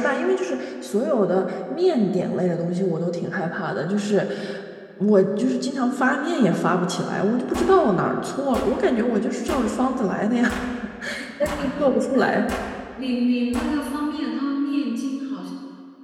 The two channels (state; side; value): identical; both; correlation 1.00